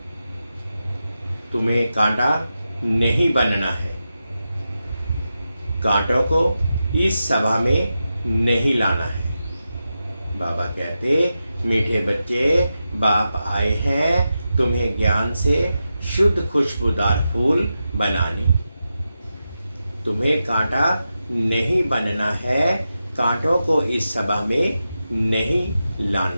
तुम्हें कांटा नहीं बनना है। कांटों को इस सभा में नहीं लाना है। बाबा कहते, मीठे बच्चे, बाप आए हैं तुम्हें ज्ञान से शुद्ध खुशबूदार फूल बनाने। तुम्हें कांटा नहीं बनना है। कांटों को इस सभा में नहीं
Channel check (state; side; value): inverted; both; correlation -0.90